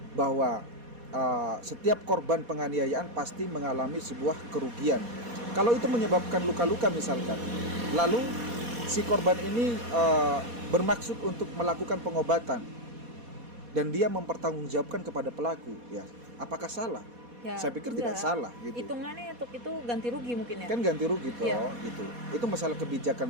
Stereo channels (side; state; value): left; late; 4.2 ms